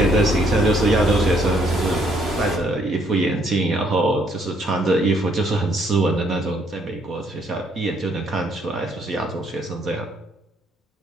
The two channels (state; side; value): normal; both; correlation 0.68